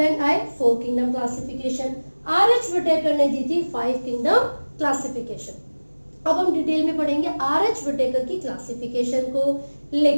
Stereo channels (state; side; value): inverted; both; correlation -1.00